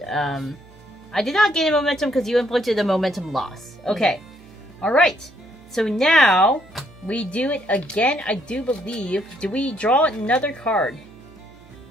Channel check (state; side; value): noise; right; hum, 25 dB below the sound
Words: I did not gain a momentum because you inflicted a momentum loss. Okay. Alright. So now, we do it again, I do believe. Do we draw another card?